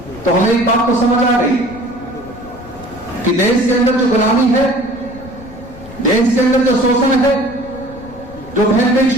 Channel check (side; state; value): left; noise; rumble, 18 dB below the sound